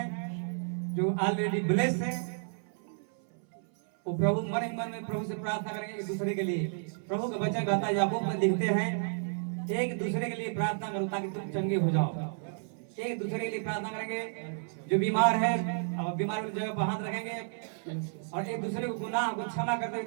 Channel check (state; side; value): silent; left; 57 dB below the other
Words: जो ऑलरेडी ब्लेस्ड हैं, वो प्रभु मन ही मन में प्रभु से प्रार्थना करेंगे एक दूसरे के लिए। प्रभु का वचन कहता है, याकूब में लिखते हैं, एक दूसरे के लिए प्रार्थना करो ताकि तुम चंगे हो जाओ। एक दूसरे के लिए प्रार्थना करेंगे। जो बीमार है अब बीमार वाली जगह पर हाथ रखेंगे और एक दूसरे को गुनाह को क्षमा कर